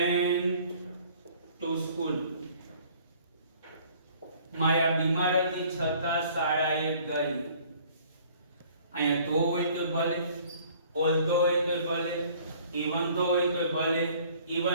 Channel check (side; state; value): both; inverted; correlation -0.55